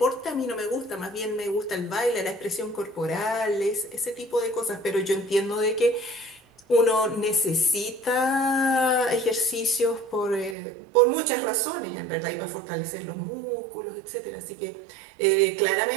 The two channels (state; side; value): drops out; left; at 10.6 s